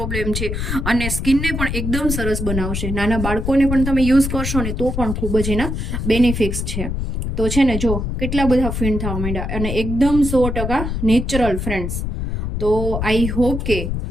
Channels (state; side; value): noise; left; rumble, 3 dB below the sound